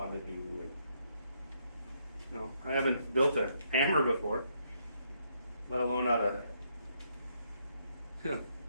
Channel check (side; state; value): both; inverted; correlation -0.74